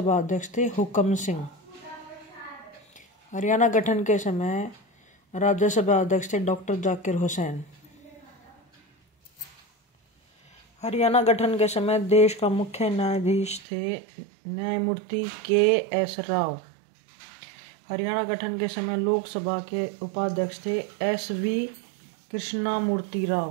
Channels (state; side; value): drops out; left; at 13.7 s